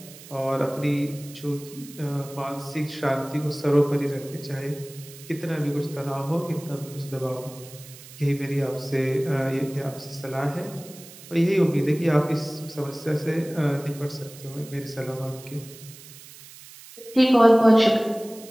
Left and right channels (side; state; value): right; noise; hiss, 18 dB below the sound